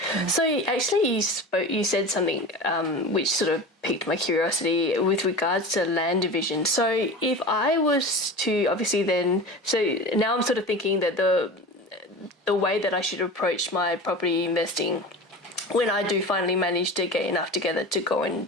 So actually you said something which sort of piqued my curiosity with regards to land division. So if I was to obviously then, so now I'm sort of thinking that the way that I should approach my property investing when I do finally manage to get enough together to go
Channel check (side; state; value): both; normal; correlation 0.32